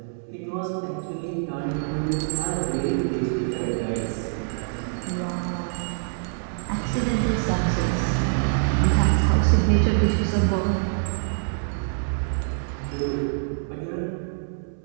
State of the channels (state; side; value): silent; left; 62 dB below the other